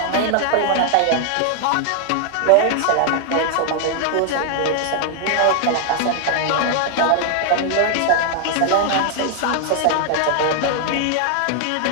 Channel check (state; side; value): different; both; correlation 0.00